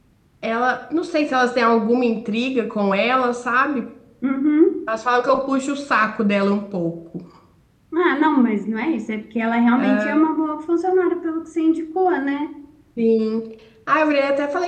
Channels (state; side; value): identical; both; correlation 1.00